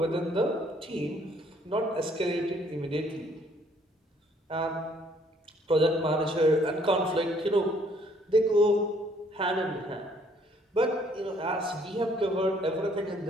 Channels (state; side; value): normal; both; correlation 0.64